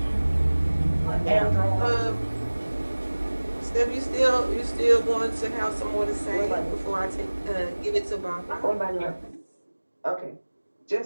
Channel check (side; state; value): both; inverted; correlation -1.00